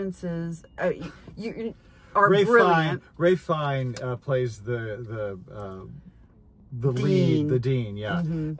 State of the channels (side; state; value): both; identical; correlation 1.00